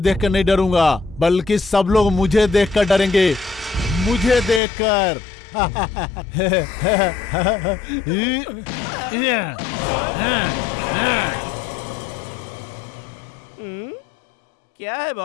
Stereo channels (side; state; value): right; drops out; at 4.6 s